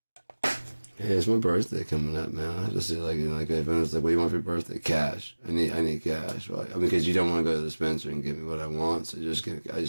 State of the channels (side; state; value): both; inverted; correlation -1.00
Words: Hey, it's my birthday coming up, man. I have to see like, you know, like if anyone's like, what do you want for your birthday? Cash. I need cash. Right? I mean, because you don't want to go to the dispenser and give me what I want, so I just need